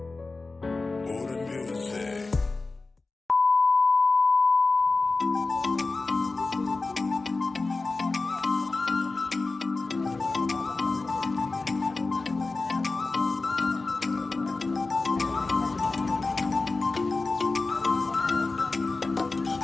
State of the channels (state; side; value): quieter; right; 3.6 dB